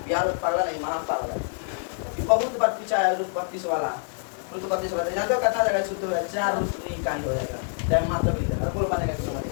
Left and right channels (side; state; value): right; silent; 61 dB below the other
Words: यार पागल नहीं, महा पागल है, बहुत बार पूछा है। रूट 32 वाला, रूट 32 वाला यहाँ तो कितना जाएगा? सूत्र है 4 रूट नहीं का ही हो जाएगा, चाहे मात्र भी देगा। बोल बनेगा कि नहीं